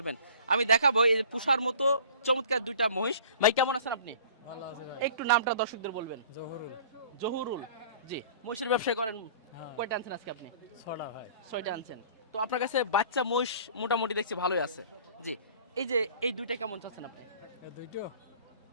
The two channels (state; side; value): inverted; both; correlation -0.48